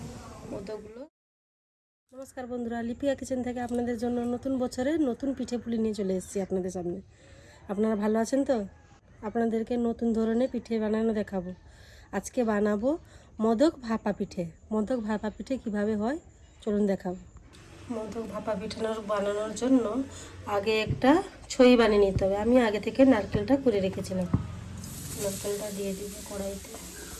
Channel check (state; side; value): identical; both; correlation 1.00